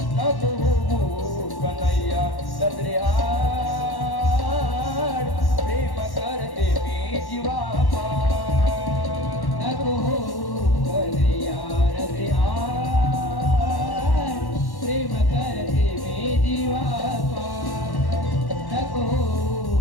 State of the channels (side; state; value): right; late; 1.1 ms